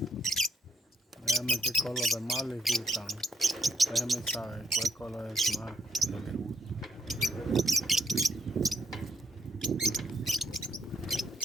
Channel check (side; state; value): both; normal; correlation 0.73